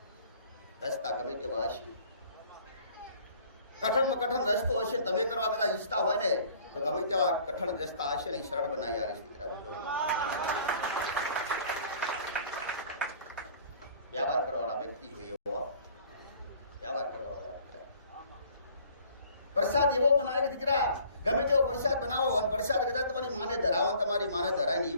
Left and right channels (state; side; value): inverted; both; correlation -0.53